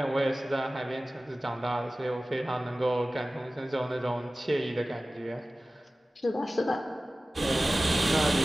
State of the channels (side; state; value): both; normal; correlation 0.96